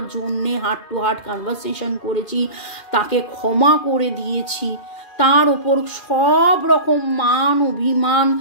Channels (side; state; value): right; late; 2.4 ms